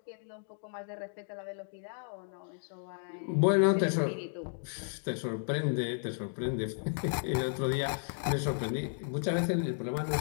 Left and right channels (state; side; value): silent; right; digital silence